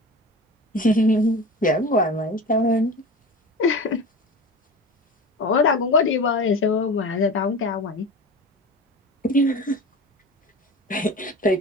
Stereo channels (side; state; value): both; normal; correlation 0.32